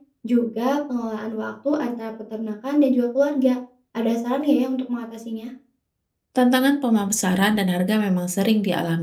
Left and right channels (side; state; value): both; identical; correlation 1.00